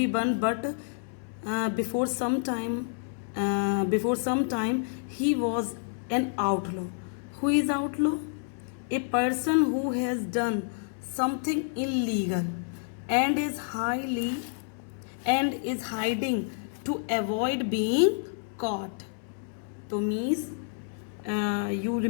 but before some time he was an outlaw. Who is outlaw? A person who has done something illegal and is hiding to avoid being caught. So means you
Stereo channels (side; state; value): right; silent; 59 dB below the other